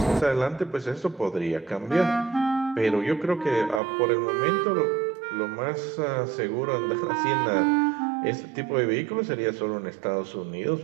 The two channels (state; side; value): drops out; left; at 3.8 s